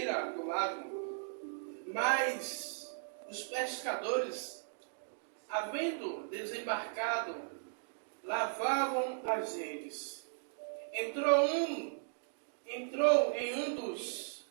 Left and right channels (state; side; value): silent; left; digital silence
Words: do lago. Mas os pescadores, havendo desembarcado, lavavam as redes. Entrou em um